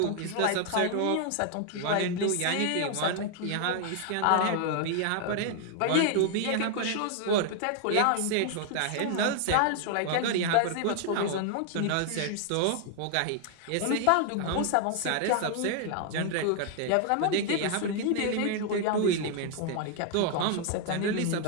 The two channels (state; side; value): different; both; correlation 0.00